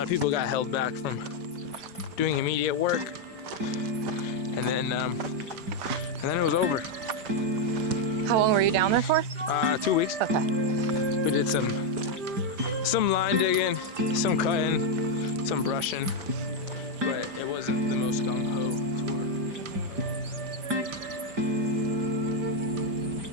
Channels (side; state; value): left; late; 5.0 ms